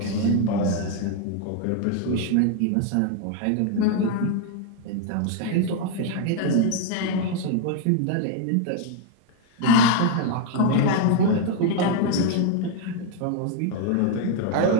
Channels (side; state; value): both; different; correlation 0.00